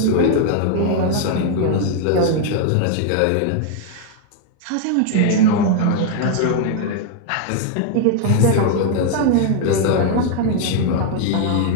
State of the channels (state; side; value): different; both; correlation 0.00